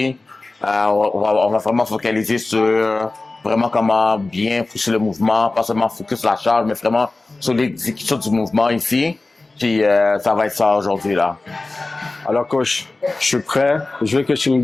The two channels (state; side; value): quieter; right; 3.2 dB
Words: On va vraiment focaliser sur vraiment comment bien pousser le mouvement, pas seulement focus sur la charge, mais vraiment sur l'exécution du mouvement ici. Puis ça va être ça aujourd'hui là. Alors coach, je suis prêt. Je veux que tu me